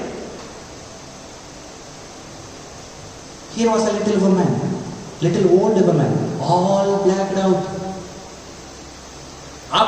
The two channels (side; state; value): both; identical; correlation 1.00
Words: Here was a little woman, little old woman, all blacked out.